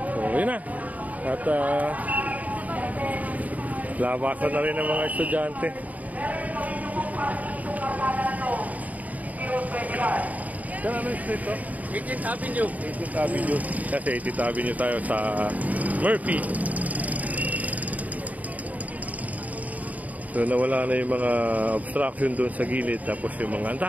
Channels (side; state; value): left; late; 0.074 ms